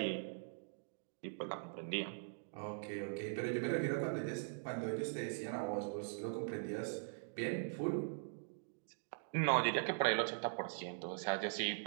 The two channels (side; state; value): left; silent; digital silence